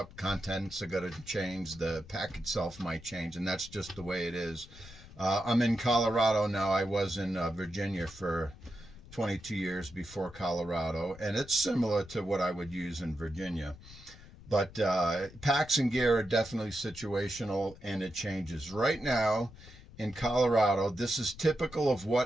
Contents are going to change. The pack itself might change, and that's just the way it is. I'm in Colorado now. I was in Virginia for 22 years before Colorado, and it's similar to what I would use in Virginia. But packs and gear are definitely situational, and it changes. Right now, in Colorado, this is typical of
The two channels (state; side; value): noise; left; rumble, 19 dB below the sound